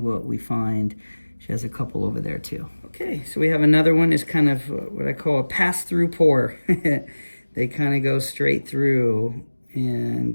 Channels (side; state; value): both; inverted; correlation -1.00